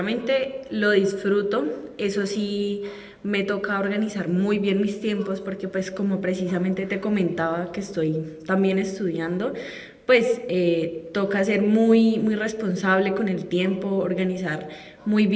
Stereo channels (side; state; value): both; identical; correlation 1.00